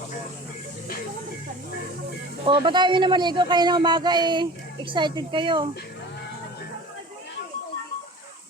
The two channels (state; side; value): normal; both; correlation 0.40